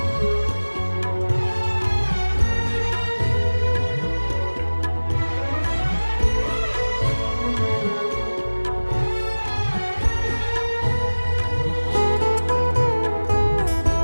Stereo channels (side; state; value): both; inverted; correlation -1.00